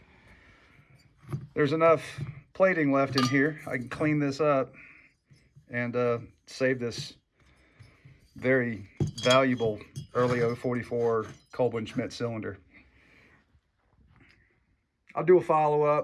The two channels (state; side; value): identical; both; correlation 1.00